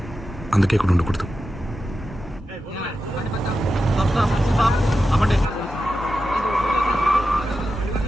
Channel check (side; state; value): both; normal; correlation 0.91